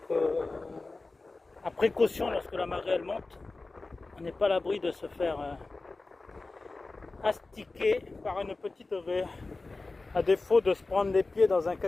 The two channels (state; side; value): quieter; right; 3.4 dB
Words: à précaution lorsque la marée elle monte, on n'est pas à l'abri de se faire astiquer par une petite raie. À défaut de se prendre les pieds dans un